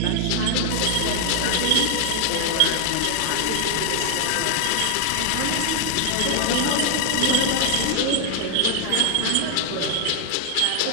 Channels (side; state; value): both; different; correlation 0.00